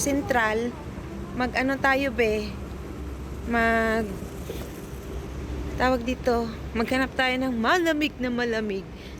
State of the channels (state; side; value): identical; both; correlation 1.00